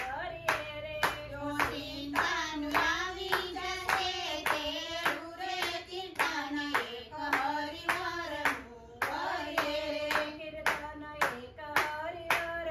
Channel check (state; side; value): identical; both; correlation 1.00